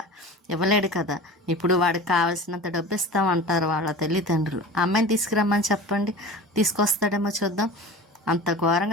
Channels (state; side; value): normal; both; correlation 0.36